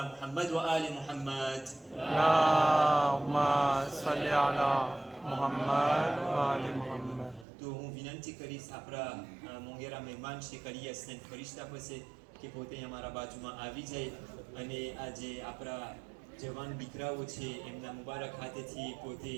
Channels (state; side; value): drops out; left; at 7.5 s